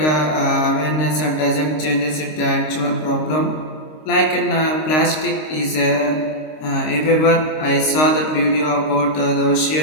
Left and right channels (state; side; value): late; right; 26 ms